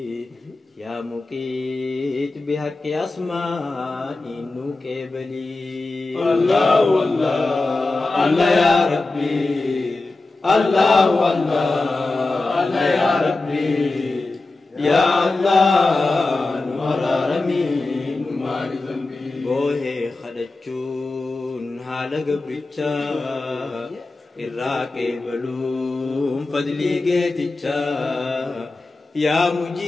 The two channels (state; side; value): quieter; right; 3.3 dB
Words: يا مقيت بحق أسماء نوكبلي الله الله الله يا ربي الله الله الله يا ربي يا الله نورارمي نماري ذنبي بوهي خدچون حال قبرچا الراقي بلوم فضلي قيتچا يا